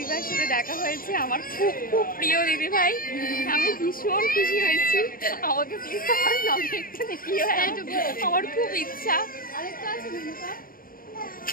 সাথে দেখা হয়েছে, আমার খুব খুব প্রিয় দিদিভাই। আমি ভীষণ খুশি হয়েছি। আমাকে প্লিজ আমার ব্লগে একটু দেখিও, আমার খুব ইচ্ছা।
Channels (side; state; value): right; late; 0.41 ms